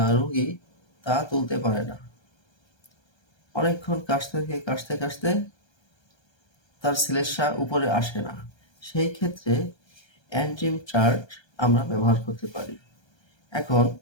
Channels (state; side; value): late; right; 1.3 ms